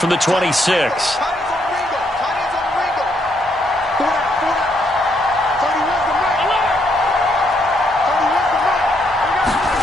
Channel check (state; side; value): noise; right; hum, 26 dB below the sound